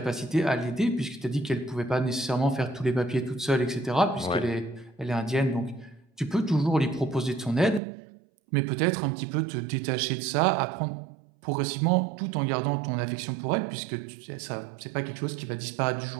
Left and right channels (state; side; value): drops out; left; at 7.8 s